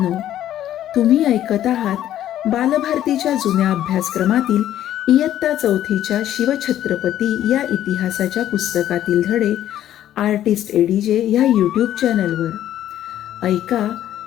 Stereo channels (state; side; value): quieter; right; 12.0 dB